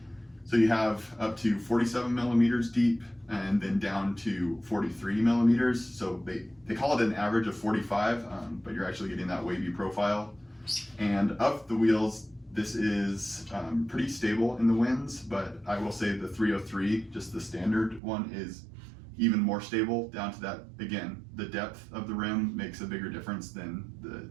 So you have up to 47 millimeters deep and then down to 43 millimeters. So they call it an average of 45, but you're actually getting that wavy profile. And of the wheels, this is pretty stable in the winds, but I will say the 303, just the standard one, is even more stable down to that. Again, the depth of the rim makes a bigger difference than the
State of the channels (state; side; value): drops out; left; at 18.0 s